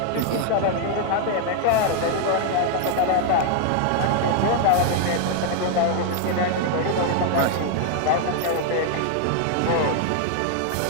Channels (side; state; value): both; different; correlation 0.00